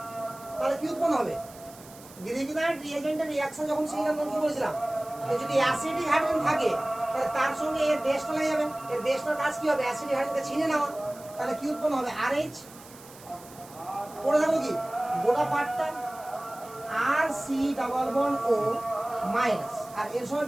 তাহলে কি উৎপন্ন হবে? গ্রিগনার্ড রিয়েজেন্টের রিঅ্যাকশন যখন শিখলাম তখন কি বলেছিলাম? যে যদি অ্যাসিডিক হাইড্রোজেন থাকে তাহলে তার সঙ্গে এর বেসটা লেগে যাবে। এর বেসটার কাজ কি হবে? অ্যাসিডিক হাইড্রোজেনকে ছিনে নেওয়া। তাহলে কি উৎপন্ন হবে? RH। পড়ে থাকবো কি গোটা পার্টটা? RC++O-, আর এর সঙ্গে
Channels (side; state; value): right; noise; hiss, 20 dB below the sound